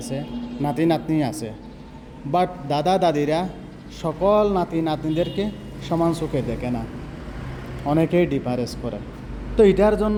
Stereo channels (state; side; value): identical; both; correlation 1.00